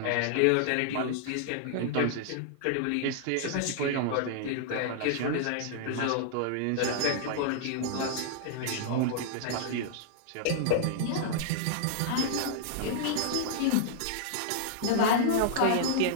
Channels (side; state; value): both; different; correlation -0.01